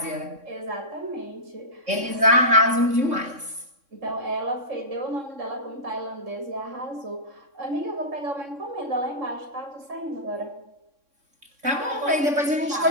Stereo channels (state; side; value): late; left; 3.5 ms